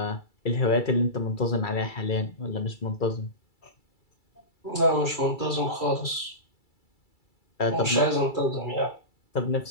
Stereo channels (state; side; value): late; right; 2.3 ms